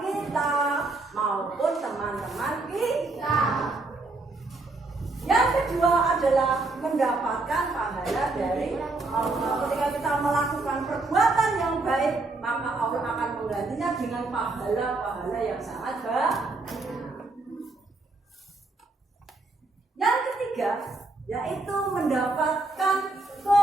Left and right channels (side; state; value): left; quieter; 3.3 dB